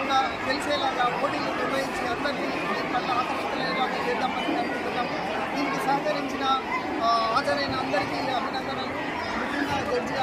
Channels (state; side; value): identical; both; correlation 1.00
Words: తెలిసేలాగా పోటీలు నిర్వహించి అందరికీ దీని పట్ల ఆకర్షితులయ్యేలాగా చేద్దామని అనుకుంటున్నాము. దీనికి సహకరించిన హాజరైన అందరికీ అభినందనలు. ముఖ్యంగా జడ్జి